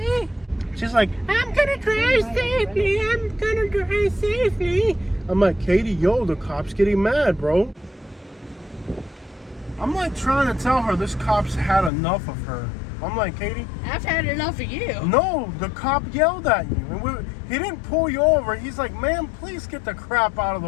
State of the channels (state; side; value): drops out; right; at 11.9 s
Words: She's like, I'm gonna drive safely. I'm gonna drive safely. I'm like, Katie, yo, the cop's getting mad, bro. I'm like trying to tell her this cop's had enough of her. I'm like, Katie, I've had enough of you. no, the cop yelled at you. And he didn't pull you over. He's like, ma'am, please get the crap out of